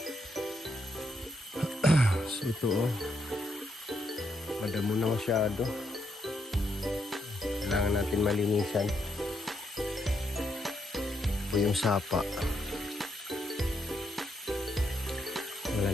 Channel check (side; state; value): both; normal; correlation 0.76